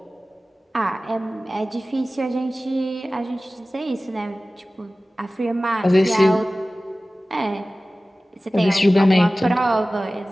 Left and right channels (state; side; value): normal; both; correlation 0.97